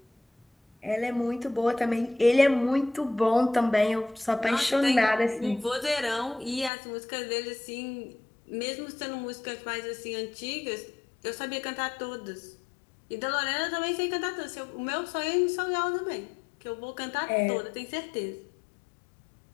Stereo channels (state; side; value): drops out; right; at 6.7 s